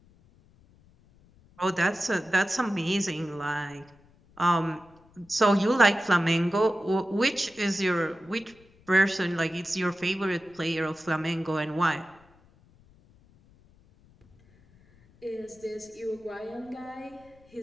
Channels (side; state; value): left; noise; rumble, 29 dB below the sound